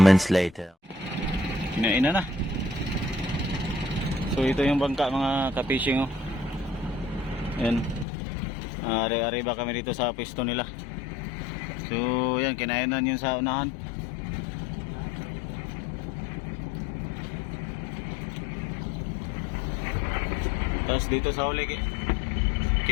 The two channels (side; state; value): right; drops out; at 8.1 s